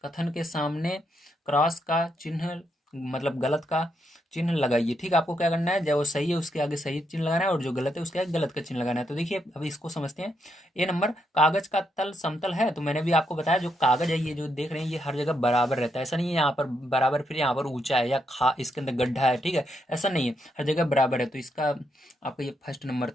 कथन के सामने क्रॉस का चिन्ह, मतलब गलत का चिन्ह लगाइए। ठीक है, आपको क्या करना है, जो सही है उसके आगे सही चिन्ह लगाना है और जो गलत है उसके आगे गलत का चिन्ह लगाना है। तो देखिए अभी इसको समझते हैं। ए नंबर, कागज का तल समतल है, तो मैंने भी आपको बताया जो कागज है ये जो देख रहे हैं ये हर जगह बराबर रहता है, ऐसा नहीं है यहाँ पर बराबर फिर यहाँ पर ऊंचा है या खा इसके अंदर गड्ढा है, ठीक है, ऐसा नहीं है, हर जगह बराबर है। तो इसका आपका ये फर्स्ट नंबर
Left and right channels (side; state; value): both; normal; correlation 0.79